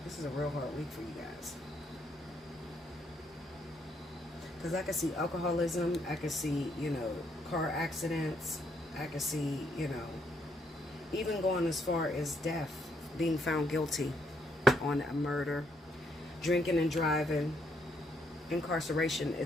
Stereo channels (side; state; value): both; normal; correlation 0.73